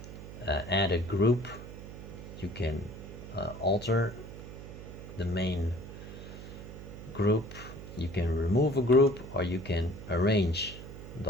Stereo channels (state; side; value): noise; right; hum, 12 dB below the sound